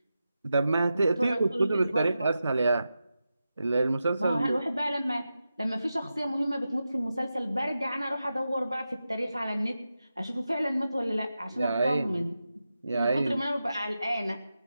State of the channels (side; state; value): both; inverted; correlation -0.91